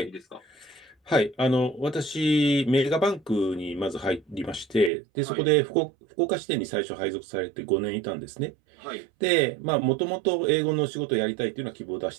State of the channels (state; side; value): drops out; left; at 4.9 s